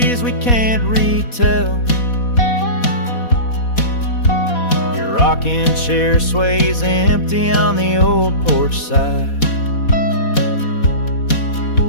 we can't retell. Your rocking chair sways empty on the old porch side,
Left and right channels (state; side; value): late; right; 4.1 ms